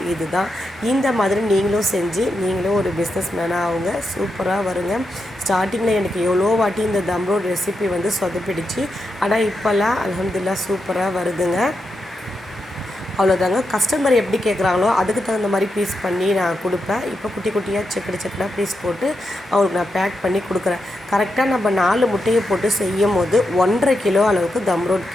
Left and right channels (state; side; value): normal; both; correlation 0.86